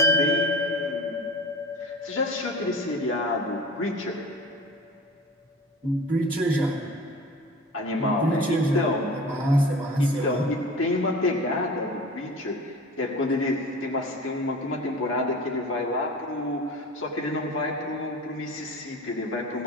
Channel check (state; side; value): normal; both; correlation 0.37